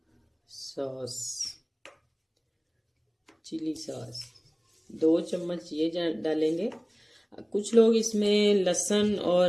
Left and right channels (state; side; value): identical; both; correlation 1.00